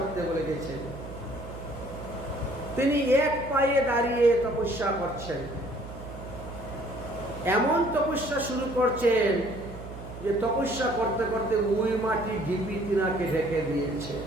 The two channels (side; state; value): right; noise; hum, 12 dB below the sound